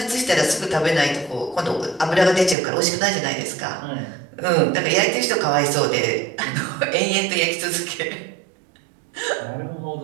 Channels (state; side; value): drops out; left; at 2.6 s